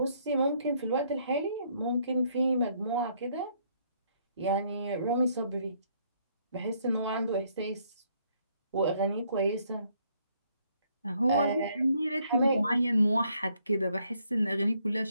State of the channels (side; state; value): both; inverted; correlation -0.69